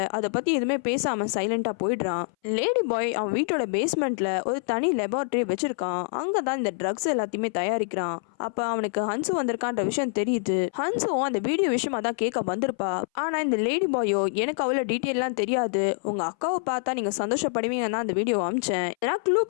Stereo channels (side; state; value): right; silent; 59 dB below the other